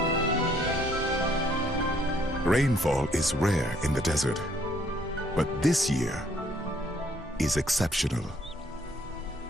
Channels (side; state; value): both; normal; correlation 0.66